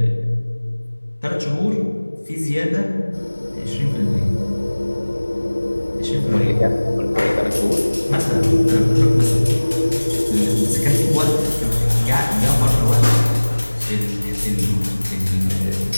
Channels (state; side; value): inverted; both; correlation -1.00